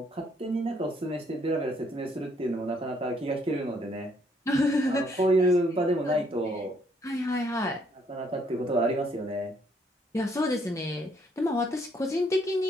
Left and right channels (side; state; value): both; normal; correlation 0.68